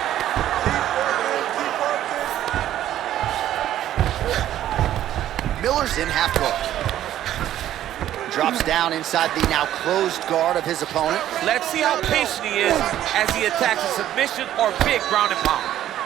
Miller's in half guard. Drops down inside the now closed guard of his opponent. Let's see how patient he is as he attacks a submission or big ground and pound.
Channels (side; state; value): left; quieter; 12.2 dB